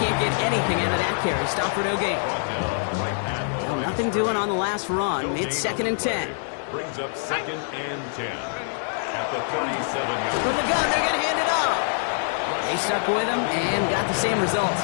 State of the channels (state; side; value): silent; right; digital silence